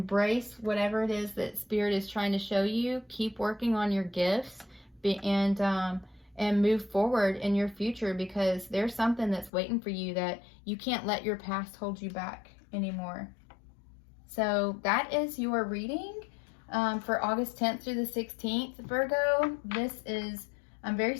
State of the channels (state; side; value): drops out; right; at 9.5 s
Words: whatever it is that Spirit is trying to show you. Keep working on your gifts, and move forward in your future, because there's something that's waiting for you that you can't let your past hold you back anymore. So that is your reading for August 10th through the 16th, Virgo. I'm very